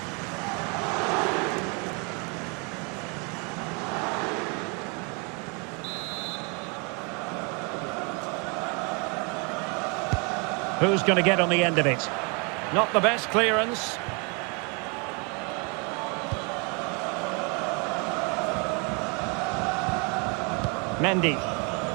Who's going to get on the end of it? Not the best clearance. Mendy.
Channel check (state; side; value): quieter; left; 32.9 dB